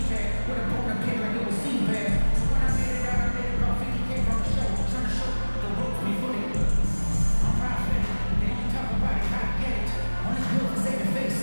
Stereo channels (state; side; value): inverted; both; correlation -1.00